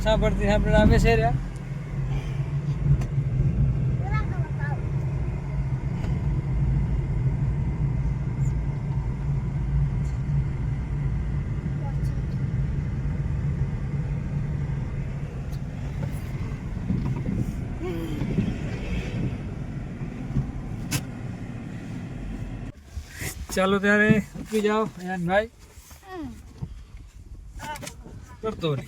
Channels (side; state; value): both; identical; correlation 1.00